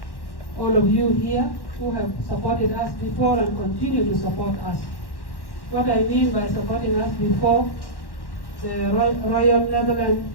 all of you here who have supported us before and continue to support us. What I mean by supporting us before, the Royal Netherlands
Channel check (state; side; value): late; right; 1.1 ms